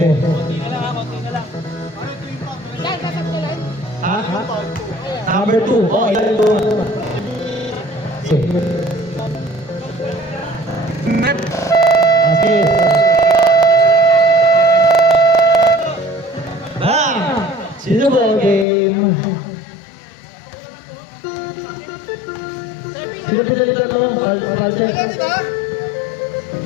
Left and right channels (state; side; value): drops out; right; at 18.7 s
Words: Ha? Number 2. Oh, ilan ito? Okay. Sino ba game? Sino pinalitan mo? Palsen?